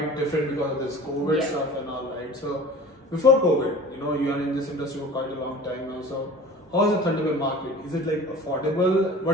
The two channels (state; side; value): normal; both; correlation 0.41